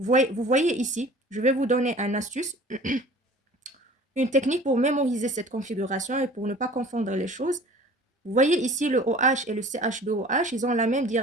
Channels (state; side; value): normal; both; correlation 0.46